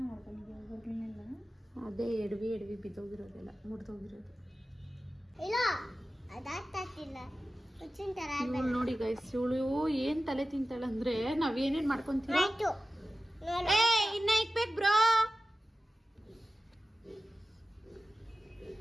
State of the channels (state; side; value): normal; both; correlation 0.95